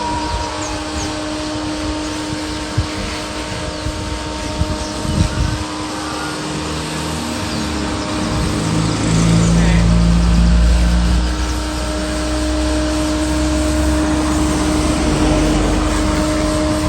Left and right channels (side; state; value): both; identical; correlation 1.00